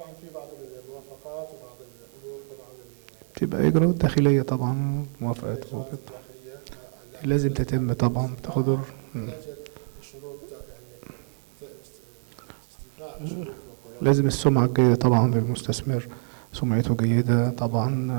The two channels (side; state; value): left; silent; digital silence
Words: في بعض الموافقات وبعض الأمور طبعا تبقى إجراءات داخلية طبعا، موافقات لازم تتم طبعا بتاخد لازم السمعة الجيدة طبعا للمستثمر، سمعته جيدة